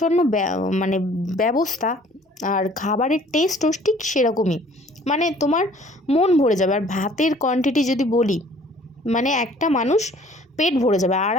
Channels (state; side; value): normal; both; correlation 0.54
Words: মানে ব্যবস্থা, আর খাবারের টেস্টও ঠিক সেরকমই, মানে তোমার মন ভরে যাবে। আর ভাতের কোয়ান্টিটি যদি বলি, মানে একটা মানুষ পেট ভরে যাবে,